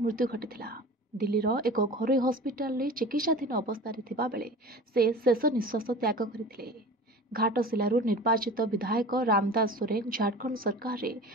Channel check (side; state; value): both; normal; correlation 0.37